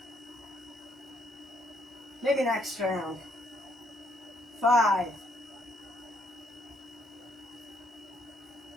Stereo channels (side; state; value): both; normal; correlation 0.70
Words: Maybe next round. 5.